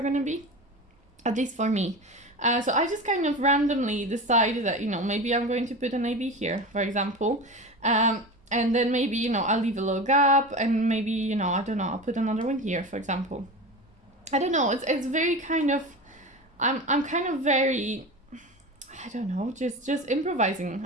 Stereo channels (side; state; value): both; normal; correlation 0.28